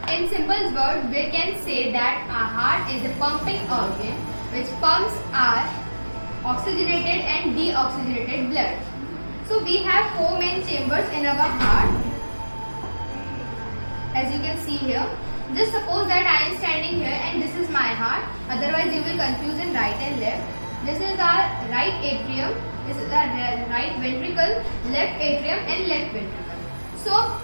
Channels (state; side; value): inverted; both; correlation -1.00